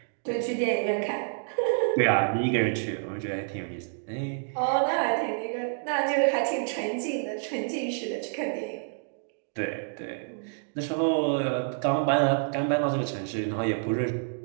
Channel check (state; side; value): silent; left; digital silence